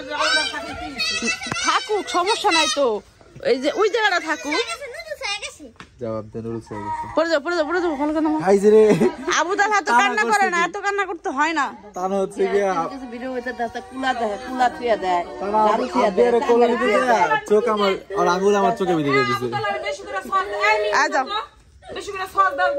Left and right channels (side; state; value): both; identical; correlation 1.00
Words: থাকুক, সমস্যা নাই তো, এই যে ওই জায়গাটা থাকুক। আবু তালা তো কান্না করে না, এত কান্না করতে হয় না। চোখ আমার আঙুল আমার চোখে ভিতরে দিচ্ছে।